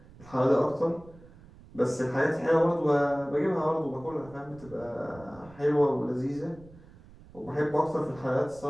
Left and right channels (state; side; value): noise; right; rumble, 22 dB below the sound